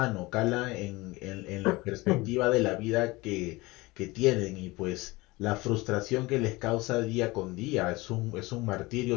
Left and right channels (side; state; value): right; quieter; 21.9 dB